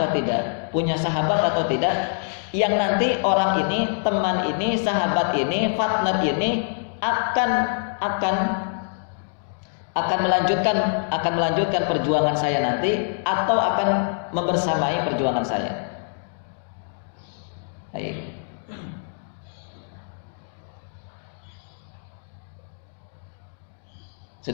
tidak? Punya sahabat atau tidak? Yang nanti orang ini, teman ini, sahabat ini, partner ini akan melanjutkan perjuangan saya nanti, atau akan membersamai perjuangan saya. Baik.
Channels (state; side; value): silent; right; digital silence